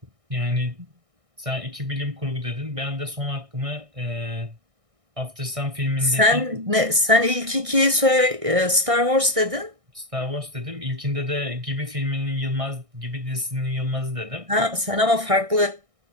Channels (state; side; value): late; left; 1.6 ms